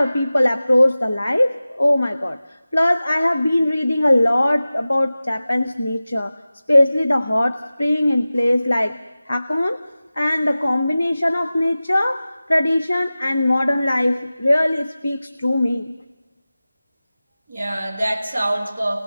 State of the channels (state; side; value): inverted; both; correlation -0.96